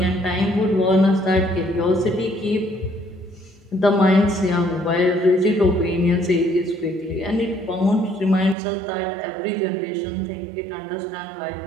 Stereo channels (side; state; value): left; drops out; at 8.6 s